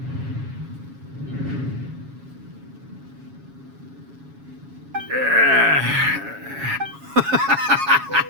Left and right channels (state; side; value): late; left; 7.2 ms